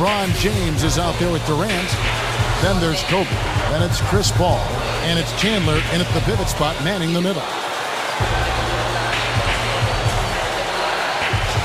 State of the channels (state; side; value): identical; both; correlation 1.00